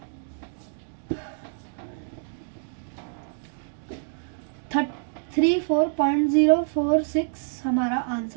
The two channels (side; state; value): left; silent; digital silence